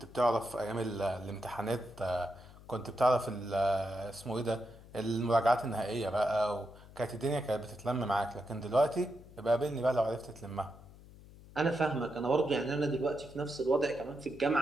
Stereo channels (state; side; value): noise; left; hum, 20 dB below the sound